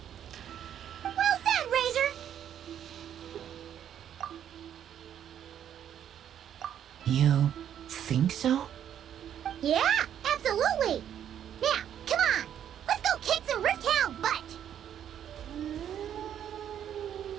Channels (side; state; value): left; quieter; 9.8 dB